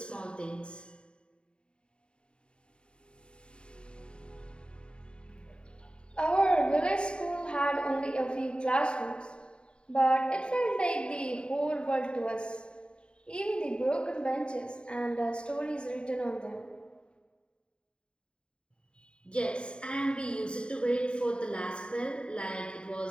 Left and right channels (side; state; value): right; late; 0.052 ms